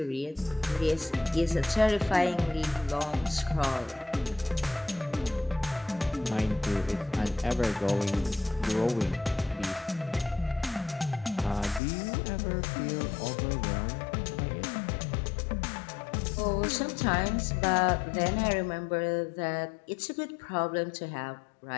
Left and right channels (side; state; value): right; drops out; at 11.8 s